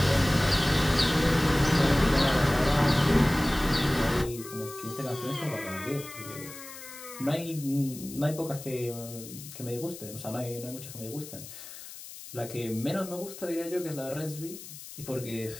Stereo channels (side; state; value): left; noise; hiss, 14 dB below the sound